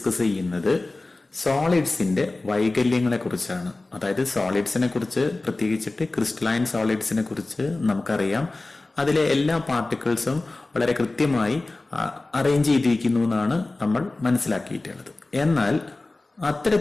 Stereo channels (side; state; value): right; quieter; 3.1 dB